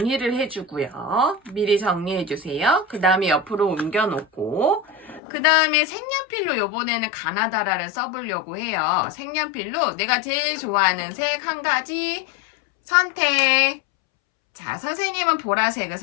해주고요. 미리 정리해주세요. 그 다음에 옆으로 옮겨놓고, 그 다음에 색연필로 요번에는 가나다라를 써보려고 해요. 색연필로 내가 제일 좋아하는 색 한 가지 선택. 자, 선생님은 보라색을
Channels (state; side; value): drops out; right; at 5.2 s